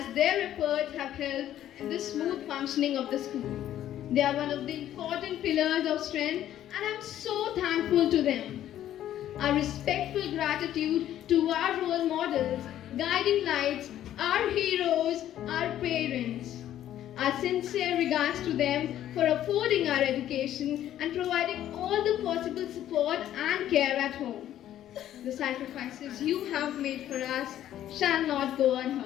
their efforts have helped in the smooth functioning of the school. They are one of the important pillars of strength and I am so thankful to them. Our respectful gratitude to our role models, guiding lights, our heroes, our parents. Our sincere regards to them for affording our education and providing all the possible support and care at home. The sacrifices you have made for us shall not go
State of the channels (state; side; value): quieter; right; 11.9 dB